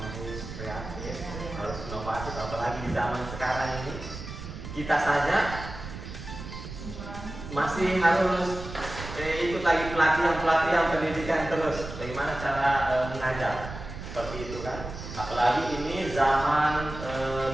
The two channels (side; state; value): right; noise; rumble, 10 dB below the sound